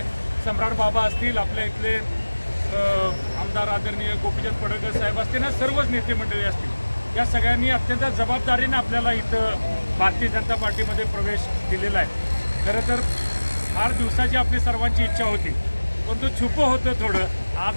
सम्राट बाबा असतील, आपल्या इथले आमदार आदरणीय गोपीचंद पडळकर साहेब असतील, ना सर्वच नेते मंडळी असतील, या सगळ्यांनी अत्यंत जबाबदारीने आपल्याला इथं भारतीय जनता पार्टीमध्ये प्रवेश दिलेला आहे। खरं तर फार दिवसाची आपली सर्वांची इच्छा होती, पण तो छुपं होतं थोडं।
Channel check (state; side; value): inverted; both; correlation -1.00